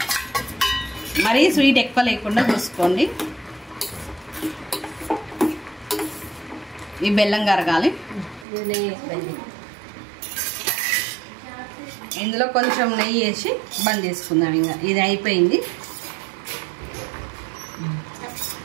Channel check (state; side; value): drops out; left; at 8.5 s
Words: మరీ స్వీట్ ఎక్కువ లేకుండా చూసుకోండి. ఈ బెల్లం కరగాలి. ఇందులో కొంచెం నెయ్యి వేసి బంద్ చేసుకుందాం. ఇంకా ఇది అయిపోయింది.